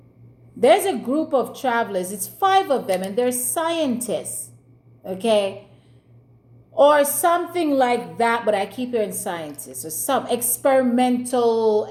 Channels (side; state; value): both; identical; correlation 1.00